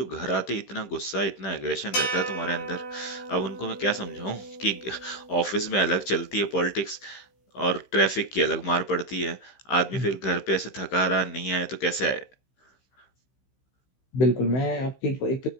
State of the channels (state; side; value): late; right; 15 ms